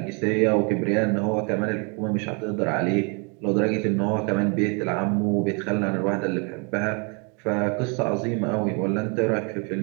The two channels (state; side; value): quieter; left; 33.8 dB